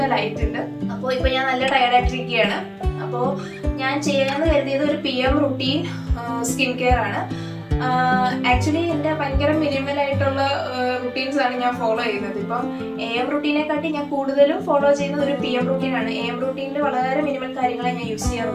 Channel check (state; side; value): identical; both; correlation 1.00